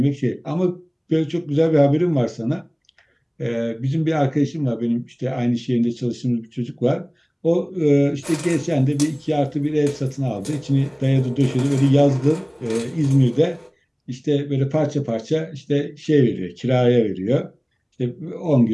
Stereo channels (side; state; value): both; identical; correlation 1.00